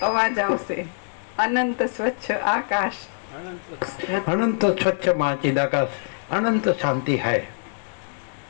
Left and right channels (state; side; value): silent; right; digital silence